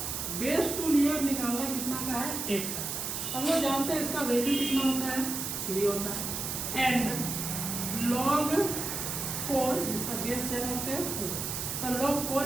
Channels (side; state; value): right; noise; hiss, 3 dB below the sound